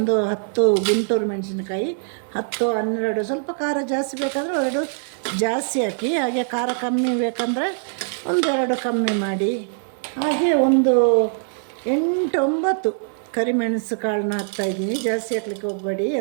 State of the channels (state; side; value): silent; left; 62 dB below the other